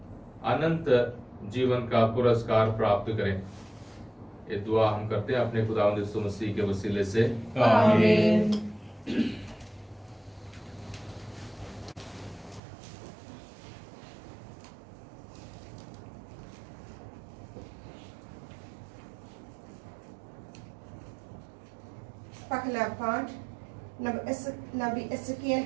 अनंत जीवन का पुरस्कार प्राप्त करें। ये दुआ हम करते हैं अपने खुदावंद यीशु मसीह के वसीले से, आमीन। पहला पाठ नबी एसकीएल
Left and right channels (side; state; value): left; drops out; at 12.6 s